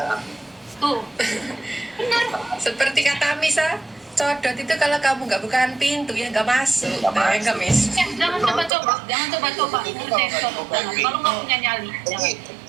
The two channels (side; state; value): left; drops out; at 8.7 s